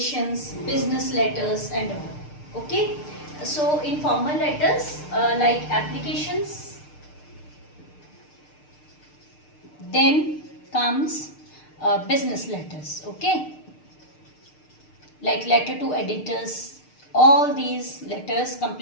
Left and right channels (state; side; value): late; right; 6.6 ms